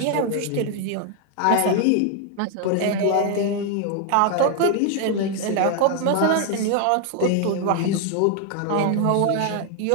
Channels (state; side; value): different; both; correlation 0.00